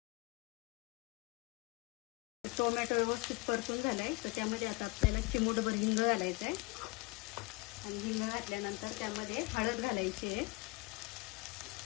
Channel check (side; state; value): right; quieter; 26.2 dB